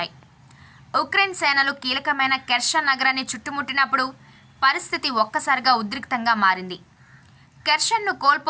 ఉక్రెయిన్ సేనలు కీలకమైన కెర్సన్ నగరాన్ని చుట్టుముట్టినప్పుడు పరిస్థితి ఒక్కసారిగా ఉద్రిక్తంగా మారింది. కెర్సన్ను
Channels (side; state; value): both; identical; correlation 1.00